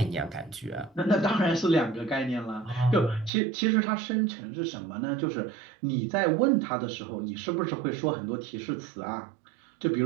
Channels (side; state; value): left; drops out; at 3.3 s